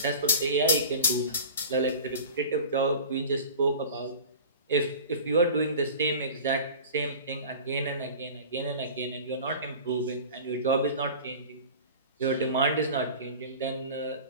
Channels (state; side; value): inverted; both; correlation -0.37